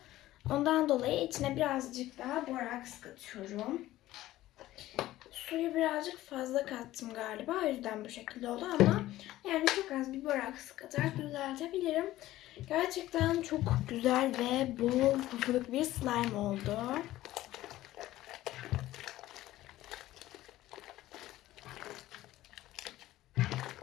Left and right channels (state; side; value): quieter; right; 15.5 dB